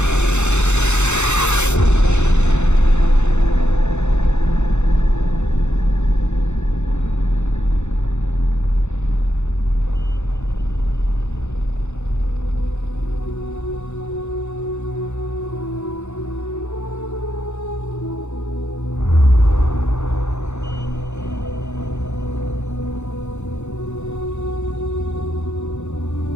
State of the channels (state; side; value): late; right; 0.83 ms